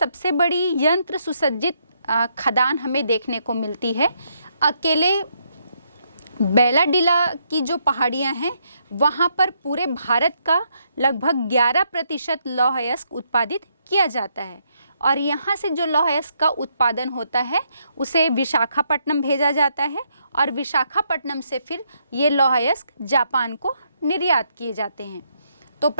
बड़ी यंत्र सुसज्जित खदान हमें देखने को मिलती है। अकेले बैलाडीला की जो पहाड़ियाँ हैं वहाँ पर पूरे भारत का लगभग 11% लौह अयस्क उत्पादित किया जाता है। और यहाँ से जो लौह अयस्क का उत्पादन होता है उसे विशाखापट्टनम भेजा जाता है, और विशाखापट्टनम से फिर ये लौह अयस्क जापान को निर्यात किए जाते हैं। तो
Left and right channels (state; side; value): inverted; both; correlation -0.76